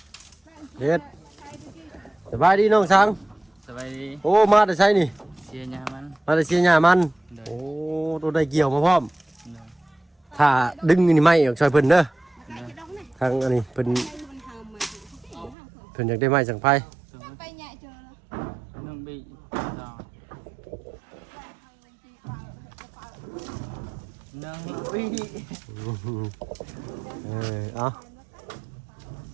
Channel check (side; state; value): left; drops out; at 15.6 s